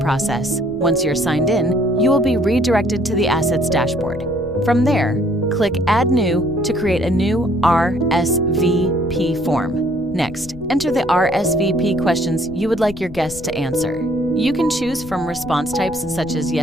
Once you're signed in, you will be redirected to the Assets dashboard. From there, click Add New to create a new RSVP form. Next, enter the RSVP questions you would like your guests to answer. You can choose from response types such as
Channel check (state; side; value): noise; left; rumble, 17 dB below the sound